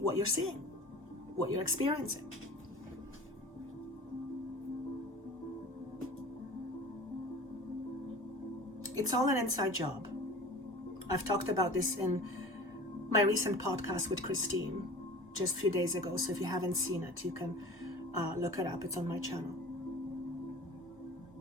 you're seeing, what you're experiencing. It's all an inside job. I've talked about this in my recent podcast with Christine just a few days ago. So if you haven't seen it, you can look it up. It's on my channel.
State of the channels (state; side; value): normal; both; correlation 0.40